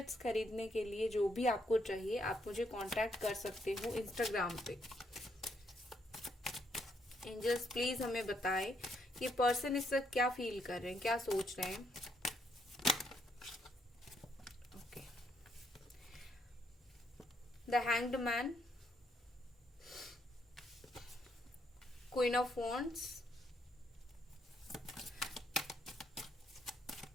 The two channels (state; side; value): normal; both; correlation 0.74